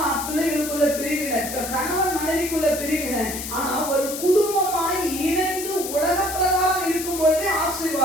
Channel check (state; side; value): noise; left; hiss, 7 dB below the sound